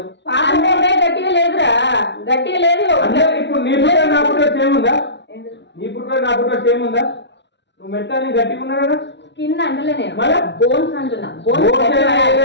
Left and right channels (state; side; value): late; right; 0.51 ms